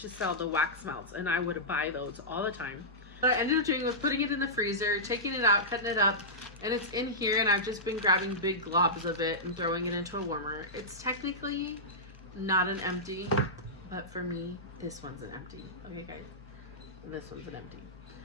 to sell the wax melts, and I would buy those all the time. What I ended up doing was putting it in the freezer, taking it out, cutting it up, and it's in here, and I've just been grabbing big globs of it and throwing it into a warmer. It's technically not an empty, but for me, this one's an empty. Okay, guys, this one's an empty.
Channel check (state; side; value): normal; both; correlation -0.14